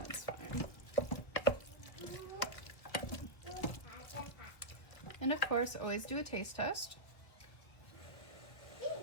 fine. And of course, always do a taste test.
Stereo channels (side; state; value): right; late; 1.7 ms